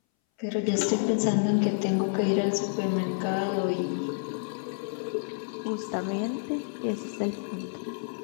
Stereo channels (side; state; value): right; silent; 59 dB below the other